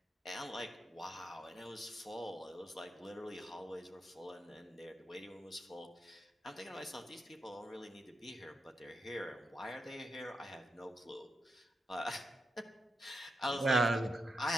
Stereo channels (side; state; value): both; normal; correlation 0.85